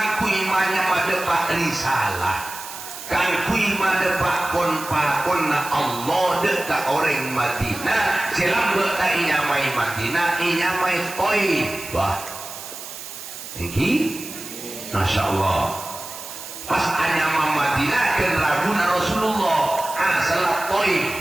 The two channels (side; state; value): right; noise; hiss, 11 dB below the sound